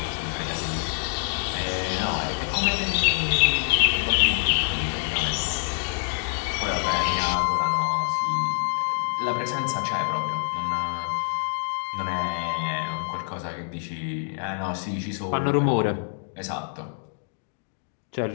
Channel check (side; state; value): right; silent; digital silence